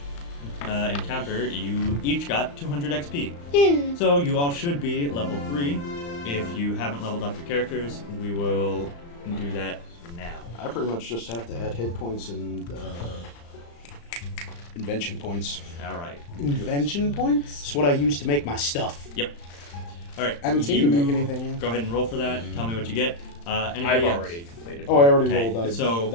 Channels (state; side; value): late; right; 35 ms